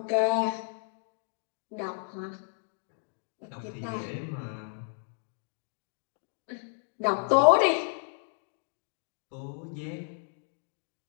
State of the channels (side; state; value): right; silent; 56 dB below the other